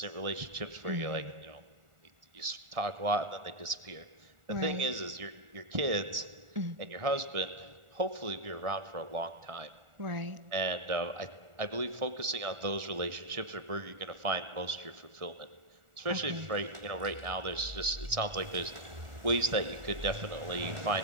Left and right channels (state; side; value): late; left; 1.4 ms